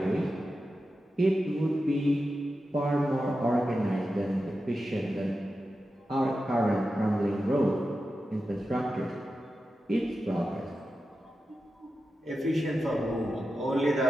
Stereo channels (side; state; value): both; normal; correlation 0.91